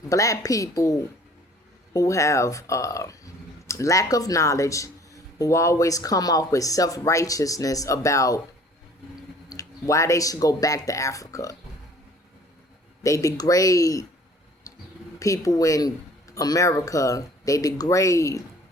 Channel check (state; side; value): normal; both; correlation 0.52